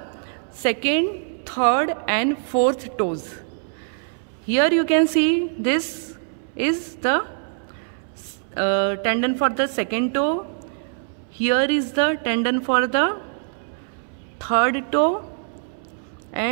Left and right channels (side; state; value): left; silent; 63 dB below the other